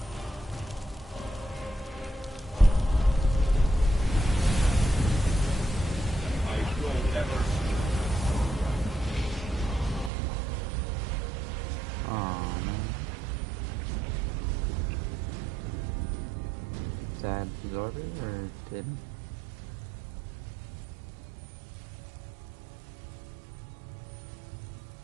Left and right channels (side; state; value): left; drops out; at 10.1 s